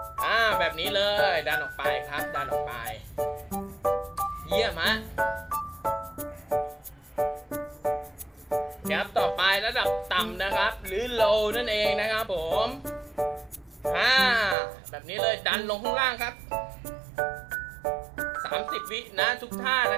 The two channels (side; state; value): left; drops out; at 14.6 s